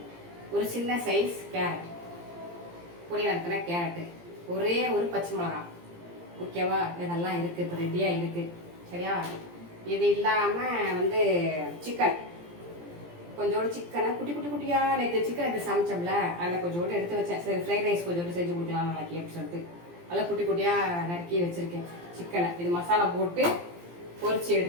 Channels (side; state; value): left; late; 17 ms